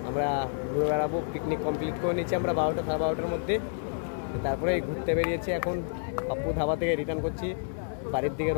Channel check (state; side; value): silent; right; digital silence